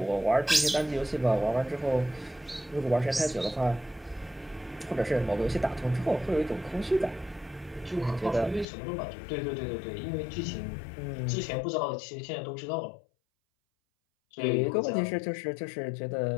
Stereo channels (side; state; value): right; drops out; at 8.7 s